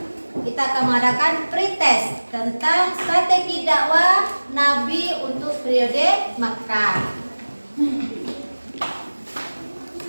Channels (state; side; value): inverted; both; correlation -1.00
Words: kita akan mengadakan pretest tentang strategi dakwah Nabi untuk periode Mekah.